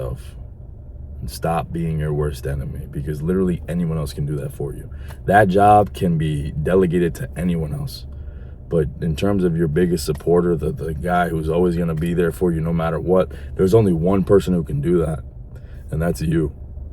and stop being your worst enemy, because literally anyone else can do that for you. That job can be delegated to anyone else. But in terms of your biggest supporter, the guy who's always going to be there for you no matter what, there's only one person who can do that, and that's you.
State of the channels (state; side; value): identical; both; correlation 1.00